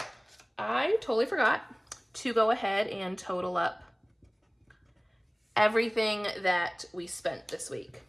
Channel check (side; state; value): both; identical; correlation 1.00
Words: I totally forgot to go ahead and total up everything that we spent this week.